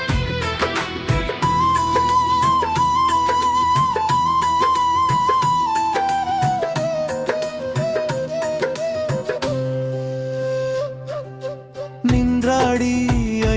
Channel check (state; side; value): identical; both; correlation 1.00